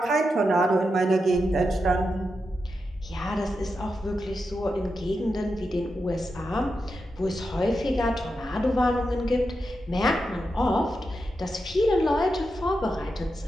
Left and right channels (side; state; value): both; normal; correlation 0.87